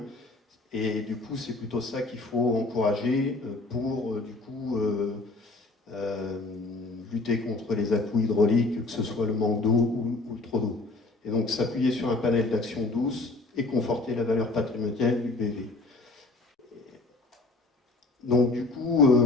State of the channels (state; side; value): quieter; right; 3.3 dB